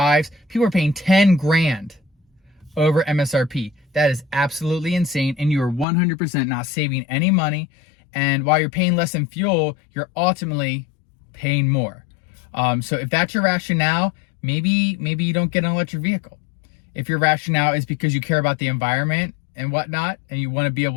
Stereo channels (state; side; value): drops out; right; at 5.9 s